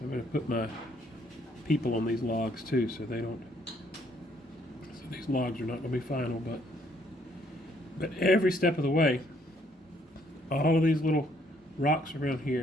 going to put my people on these logs too, so they don't. So these logs are not going to be final, but every step of the way, all of these little rocks around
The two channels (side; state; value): both; normal; correlation 0.67